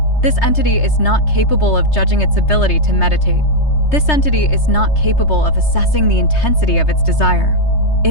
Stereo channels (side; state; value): right; late; 3.3 ms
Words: This entity is not capable of judging its ability to meditate. This entity is not capable of assessing the intensity of its desire.